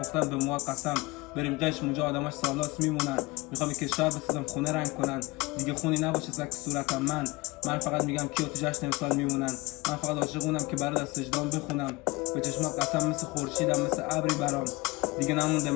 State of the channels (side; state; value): right; quieter; 23.2 dB